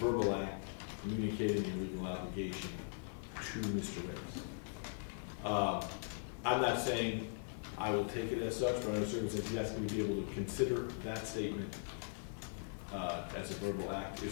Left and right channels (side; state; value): right; silent; 51 dB below the other